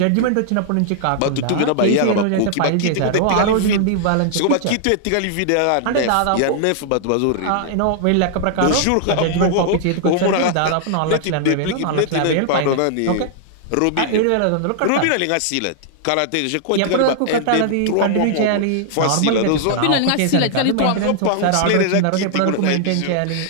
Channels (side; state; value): both; different; correlation -0.01